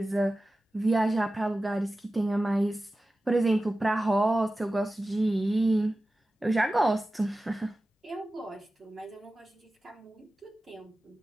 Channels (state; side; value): normal; both; correlation 0.95